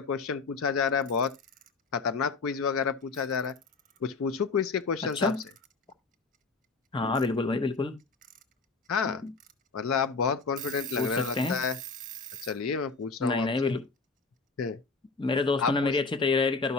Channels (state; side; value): quieter; right; 4.3 dB